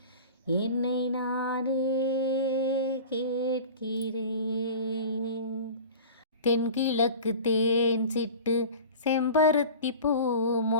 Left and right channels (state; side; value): inverted; both; correlation -0.37